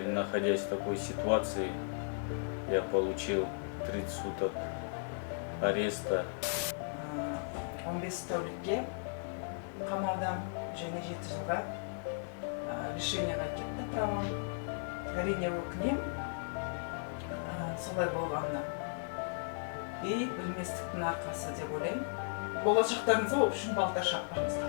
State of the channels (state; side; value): silent; right; 54 dB below the other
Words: находясь в такой ситуации, я получил 30 суток ареста. 15 тәулікке қамаудан және 7 жылға лишениеға кетті правам. Әрине өкінемін солай болғанына. И білместіктің арқасы деп ойлаймын. Болашақтарыңызға ол үшін балтар